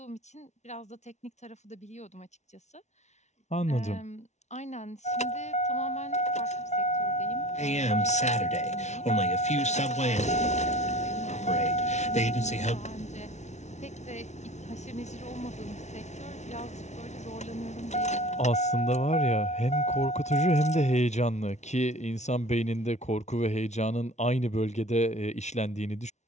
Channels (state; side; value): late; right; 0.33 ms